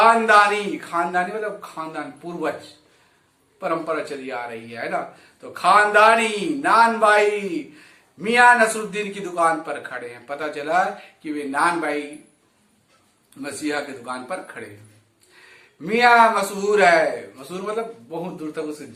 मतलब खानदान, पूर्वज परंपरा चली आ रही है ना। तो खानदानी नान बाई मियां नसरुद्दीन की दुकान पर खड़े हैं। पता चला कि वे नान बाई मसीहा की दुकान पर खड़े हैं। मियां मशहूर मतलब बहुत दूर तक उसकी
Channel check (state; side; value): identical; both; correlation 1.00